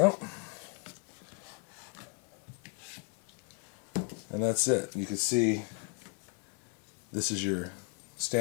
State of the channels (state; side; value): quieter; right; 36.0 dB